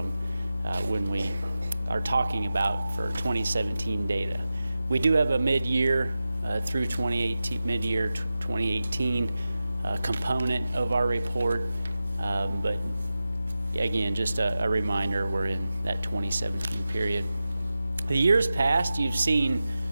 when we are talking about for 2017 data. We do have a mid-year through 2018, mid-year 2018 component of our report, but again, just a reminder, we're in that 2017 period. The years past, you've seen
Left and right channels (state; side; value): inverted; both; correlation -0.93